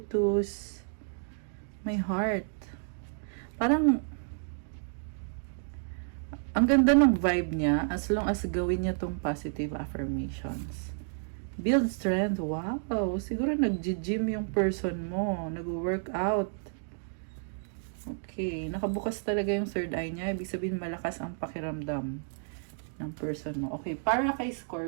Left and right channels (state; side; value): silent; left; digital silence